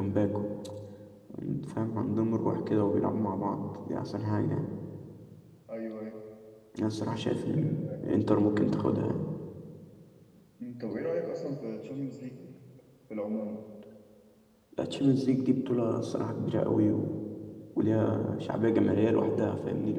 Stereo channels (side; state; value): both; identical; correlation 1.00